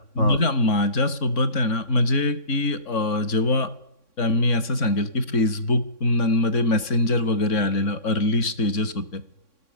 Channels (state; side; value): late; right; 3.6 ms